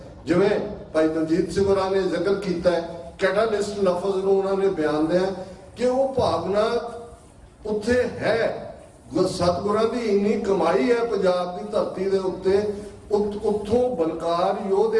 ਜਿਵੇਂ ਭਾਈ ਦਲਜੀਤ ਸਿੰਘ ਹੋਰਾਂ ਨੇ ਜ਼ਿਕਰ ਕੀਤਾ ਹੈ, ਕੈਟਾਲਿਸਟ ਲਫ਼ਜ਼ ਨੂੰ ਉਹਨਾਂ ਨੇ ਬਿਆਨ ਦਿਆ ਕਿ ਉਹ ਭਾਵਨਾ ਉੱਥੇ ਹੈ। ਸਤਿਗੁਰਾਂ ਦੀ ਇੰਨੀ ਕਮਾਈ ਹੈ ਪੰਜਾਬ ਦੀ ਧਰਤੀ ਦੇ ਉੱਤੇ, ਉੱਥੋਂ ਬਲਕਾਰ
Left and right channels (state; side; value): identical; both; correlation 1.00